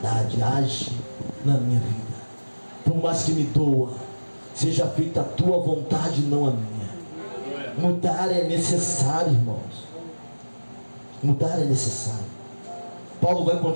age na minha vida. Por mais que me doa, seja feita a tua vontade, não a minha. Mudar é necessário, irmãos. Mudar é necessário. Paulo vai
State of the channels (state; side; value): inverted; both; correlation -1.00